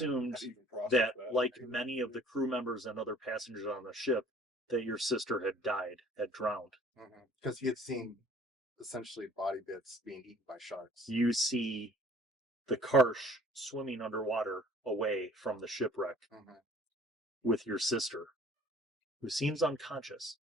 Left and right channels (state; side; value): normal; both; correlation 0.53